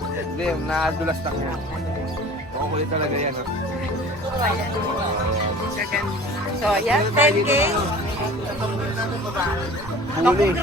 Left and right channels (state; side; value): normal; both; correlation 0.43